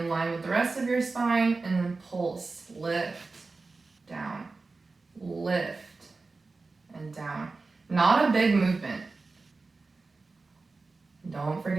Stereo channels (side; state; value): left; quieter; 3.8 dB